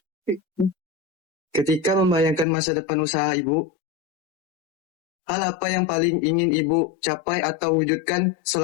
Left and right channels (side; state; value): right; drops out; at 2.5 s